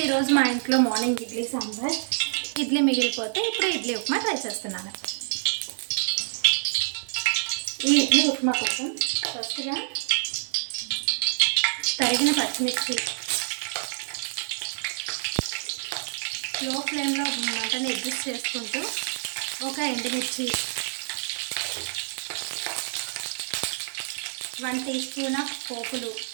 ఈరోజు మా ఇంట్లో మార్నింగ్ ఇడ్లీ సాంబార్, ఇడ్లీ మిగిలిపోతే ఇప్పుడు ఇడ్లీ ఉప్మా ట్రై చేస్తున్నాను. ఈ ఇడ్లీ ఉప్మా కోసం ఫస్ట్గా తరిగిన పచ్చిమిర్చి, లో ఫ్లేమ్లో మంటని అడ్జస్ట్ చేసుకుంటూ ఒక ఎండుమిర్చి, 1 టీ స్పూన్ ఆఫ్ పోపులు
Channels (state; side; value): silent; left; digital silence